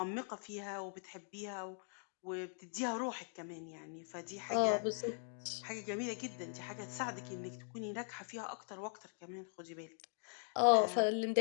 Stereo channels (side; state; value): right; silent; 50 dB below the other